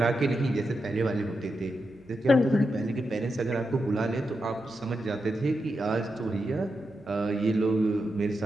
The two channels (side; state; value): right; noise; hum, 30 dB below the sound